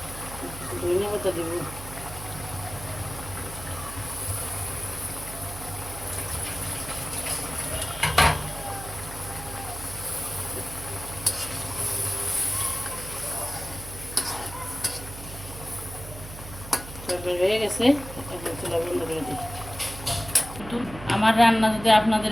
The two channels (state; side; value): noise; right; hum, 13 dB below the sound